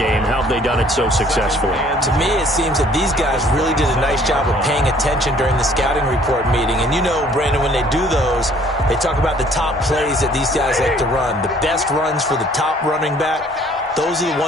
How have they done it so successfully? To me, it seems that these guys really did a nice job of paying attention during the scouting report meeting. And you know, Brandon, when they do those, they talk about the top plays that these guys like to run. The best runs for the top running back, those are the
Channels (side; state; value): both; normal; correlation 0.57